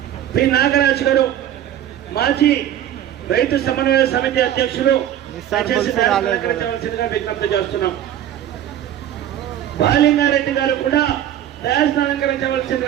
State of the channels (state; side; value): quieter; left; 11.2 dB